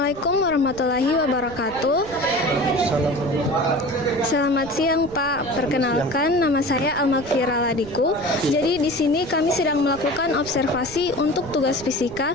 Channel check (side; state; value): right; noise; rumble, 16 dB below the sound